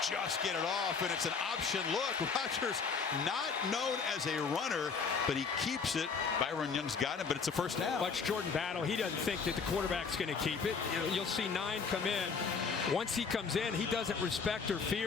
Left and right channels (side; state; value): right; quieter; 5.4 dB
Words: Just get it off, and it's an option look. Rogers not known as a runner, but he keeps it. Byron Young's got him, but it's a first down. Watch Jordan Battle. He doesn't think that the quarterback's going to keep it. You'll see 9 come in. Once he comes in, he doesn't respect or